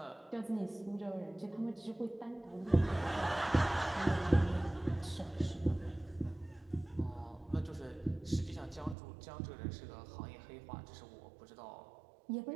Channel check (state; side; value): drops out; left; at 9.0 s